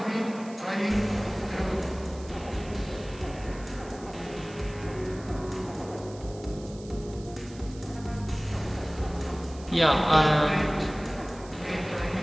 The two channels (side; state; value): right; noise; hiss, 21 dB below the sound